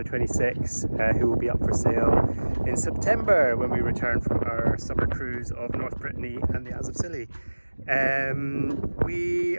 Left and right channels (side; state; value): both; inverted; correlation -1.00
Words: 26, who will be up for sale in September when we return from our summer cruise of North Brittany and the Isles of Scilly. We